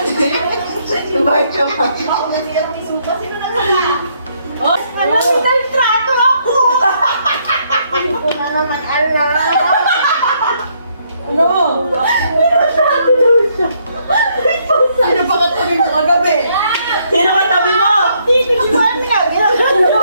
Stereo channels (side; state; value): both; inverted; correlation -0.71